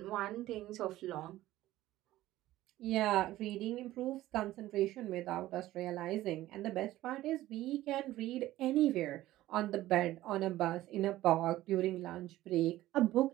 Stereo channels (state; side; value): quieter; left; 15.5 dB